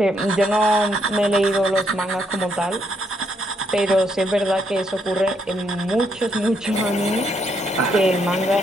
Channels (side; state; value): both; normal; correlation 0.75